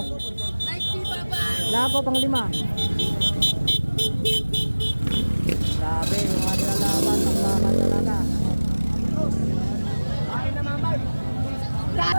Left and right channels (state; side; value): inverted; both; correlation -1.00